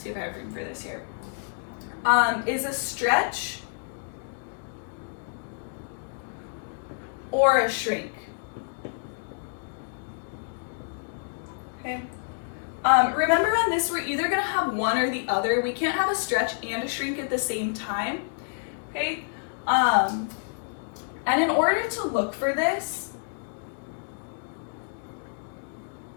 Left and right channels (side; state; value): right; silent; digital silence